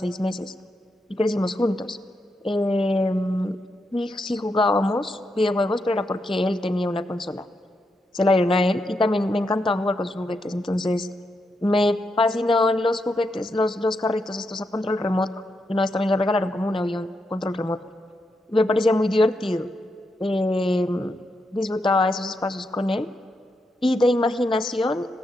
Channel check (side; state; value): both; normal; correlation 0.83